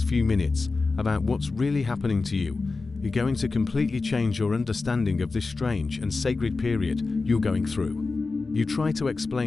few minutes about what's really happening to you is going to completely change your understanding of this strange and sacred period you're going through. You try to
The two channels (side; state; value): right; quieter; 3.9 dB